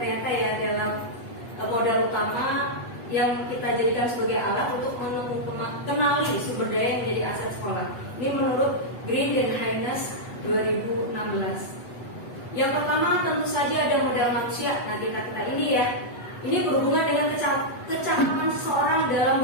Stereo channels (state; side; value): late; right; 8.2 ms